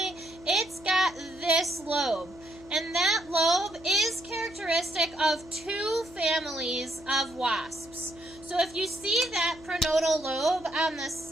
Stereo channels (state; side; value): noise; left; hum, 21 dB below the sound